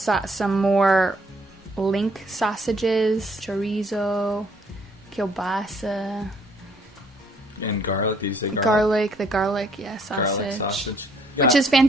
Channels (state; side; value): normal; both; correlation 0.65